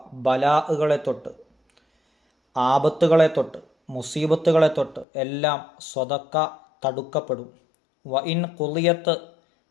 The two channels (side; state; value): right; drops out; at 5.1 s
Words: ബലാഅുകളെ തൊട്ട്, ആപത്തുകളെ തൊട്ട്, മുസീബത്തുകളെ തൊട്ട് എല്ലാം സ്വതക്ക തടുക്കപ്പെടും. വഇൻ ഖുളിയത്,